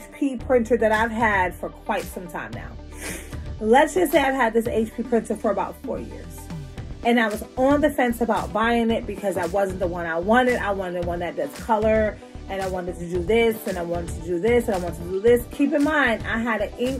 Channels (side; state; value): both; identical; correlation 1.00